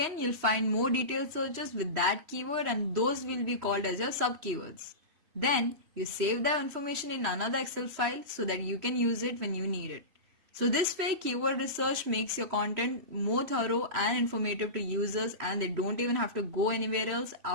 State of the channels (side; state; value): left; late; 3.1 ms